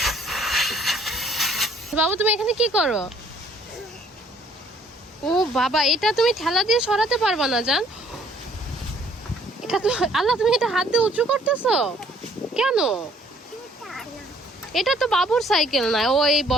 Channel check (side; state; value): both; normal; correlation 0.61